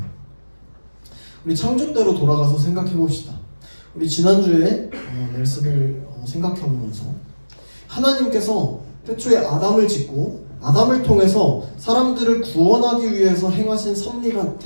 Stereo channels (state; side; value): inverted; both; correlation -1.00